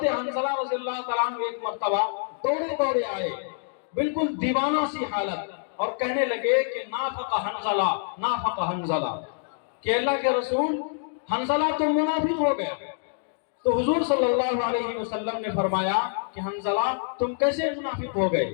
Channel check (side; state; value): right; silent; digital silence